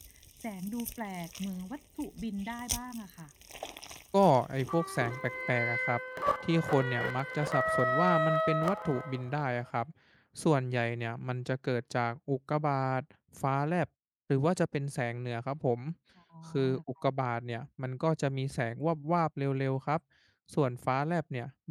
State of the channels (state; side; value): identical; both; correlation 1.00